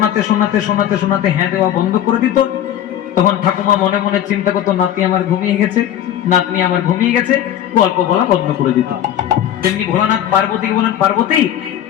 শোনাতে শোনাতে শোনাতে হ্যাঁ দেওয়া বন্ধ করে দিত, তখন ঠাকুমা মনে মনে চিন্তা করতো, নাতি আমার ঘুমিয়ে গেছে, নাতনি আমার ঘুমিয়ে গেছে, গল্প বলা বন্ধ করে দিত। তেমনি ভোলানাথ পার্বতীকে বলেন, পার্বতী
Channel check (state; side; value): quieter; right; 11.0 dB